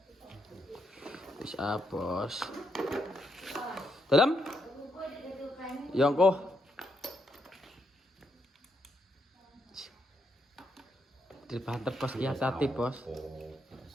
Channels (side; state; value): both; normal; correlation 0.79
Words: Bisa, Bos. Dalam? Yongko. Dibanter, Bos. Iya, hati, Bos.